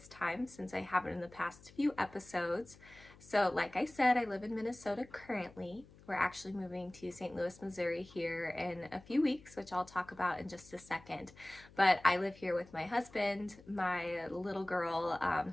time since I haven't in the past few episodes. So like I said, I live in Minnesota currently. We're actually moving to St. Louis, Missouri here in a few weeks, which I'll talk about in just a second. But I live here with my husband, my little girl,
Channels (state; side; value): noise; left; hum, 23 dB below the sound